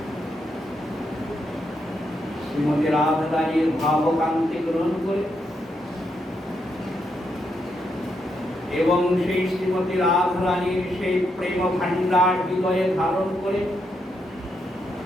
শ্রীমতী রাধারানীর ভাবকান্তি গ্রহণ করে এবং সেই শ্রীমতী রাধারানীর সেই প্রেম ভান্ডার হৃদয়ে ধারণ করে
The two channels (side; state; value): both; normal; correlation 0.80